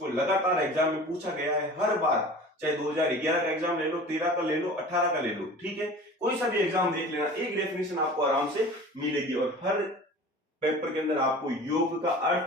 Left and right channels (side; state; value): both; normal; correlation 0.40